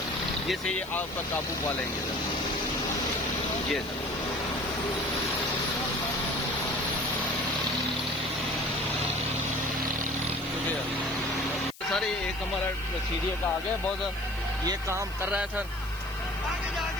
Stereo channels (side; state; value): left; noise; hiss, 19 dB below the sound